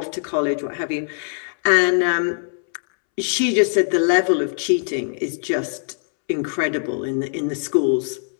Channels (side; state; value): right; silent; 65 dB below the other